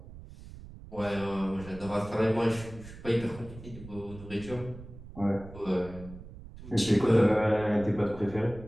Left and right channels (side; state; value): right; noise; rumble, 15 dB below the sound